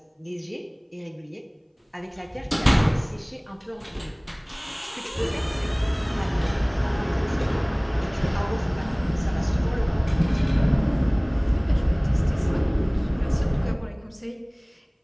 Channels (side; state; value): both; identical; correlation 1.00